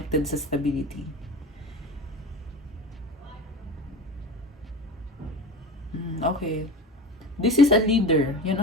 sa stability. Okay. This is a leader. Yan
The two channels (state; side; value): normal; both; correlation 0.32